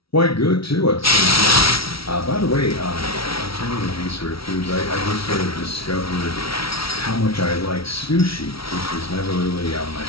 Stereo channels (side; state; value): right; late; 0.75 ms